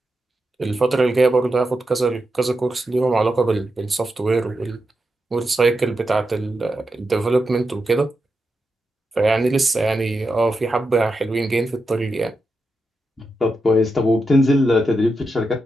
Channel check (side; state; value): both; normal; correlation 0.87